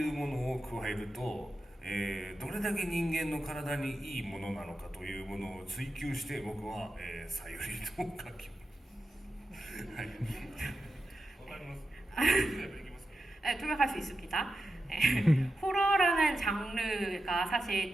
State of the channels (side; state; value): both; normal; correlation 0.90